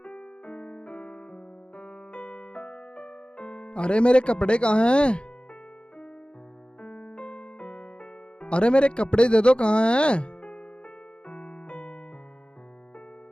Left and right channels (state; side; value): late; right; 0.055 ms